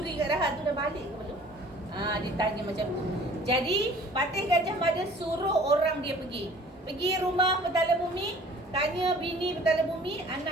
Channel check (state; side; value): normal; both; correlation 0.50